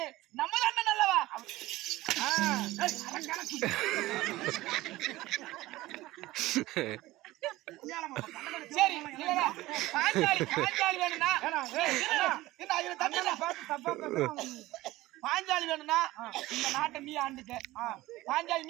நம்ம அண்ணன் அல்லவா? சரி பாஞ்சாலி வேணும்னா பாஞ்சாலி வேணும்னா இந்த நாட்டை நீ ஆண்டுக்க, பாஞ்சாலி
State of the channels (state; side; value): quieter; left; 17.9 dB